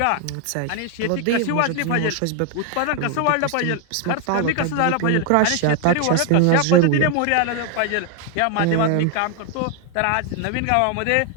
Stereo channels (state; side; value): different; both; correlation 0.00